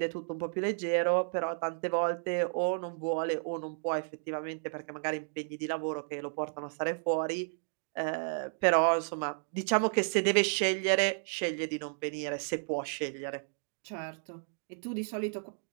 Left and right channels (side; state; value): left; silent; digital silence